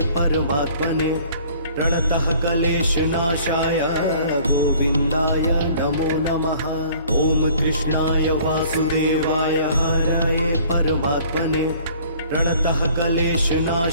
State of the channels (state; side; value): inverted; both; correlation -0.53